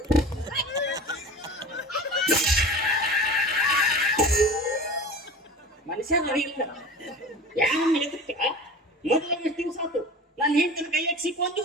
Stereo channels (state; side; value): normal; both; correlation 0.37